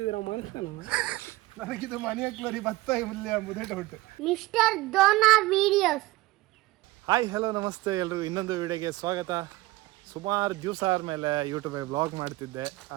ನನಗಿದು ಮನೆ ಹಾಕ್ಲರಿ ಭತ್ತ ಮುದೆ doubt. Mister Dona videos. Hi hello ನಮಸ್ತೆ ಎಲ್ರಿಗೂ ಇನ್ನೊಂದು ವಿಡಿಯೋಗೆ ಸ್ವಾಗತ. ಸುಮಾರು ದಿವಸ ಆದಮೇಲೆ ಯೂಟ್ಯೂಬಲ್ಲಿ ವ್ಲಾಗ್ ಮಾಡ್ತಿದ್ದೆ.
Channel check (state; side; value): quieter; left; 19.5 dB